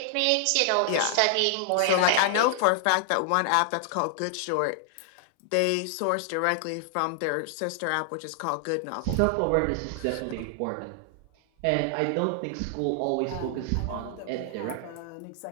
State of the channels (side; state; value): both; different; correlation 0.00